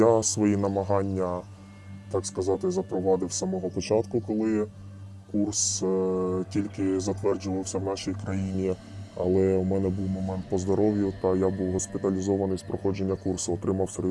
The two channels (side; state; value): both; identical; correlation 1.00